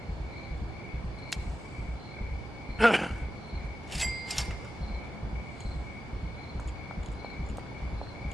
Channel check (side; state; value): both; normal; correlation 0.92